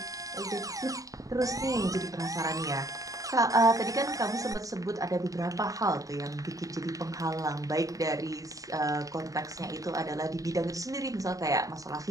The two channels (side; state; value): left; late; 0.16 ms